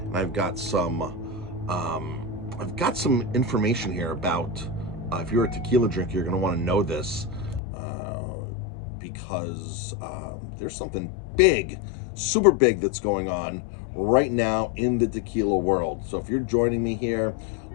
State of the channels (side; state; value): right; drops out; at 7.6 s